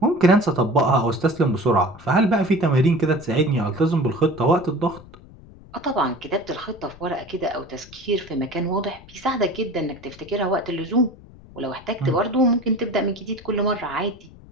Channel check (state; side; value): noise; left; rumble, 21 dB below the sound